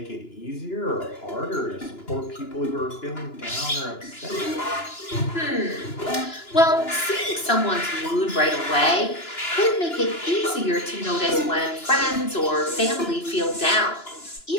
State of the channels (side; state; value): right; late; 2.9 ms